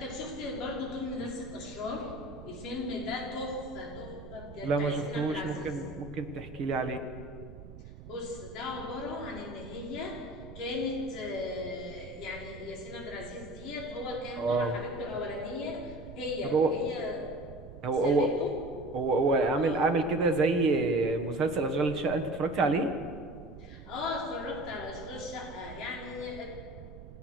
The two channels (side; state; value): right; noise; rumble, 14 dB below the sound